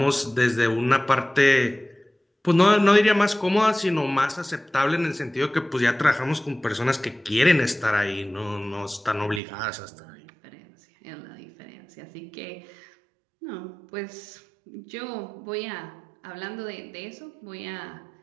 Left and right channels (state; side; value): drops out; left; at 9.4 s